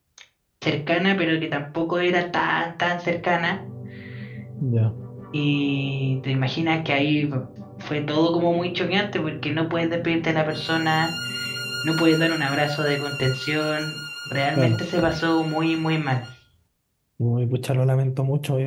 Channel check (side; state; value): both; identical; correlation 1.00